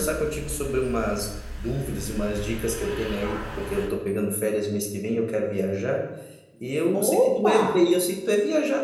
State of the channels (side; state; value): both; identical; correlation 1.00